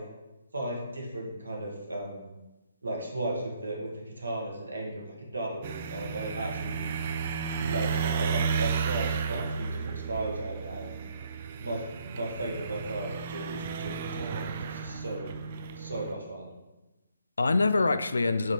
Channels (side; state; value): both; inverted; correlation -0.71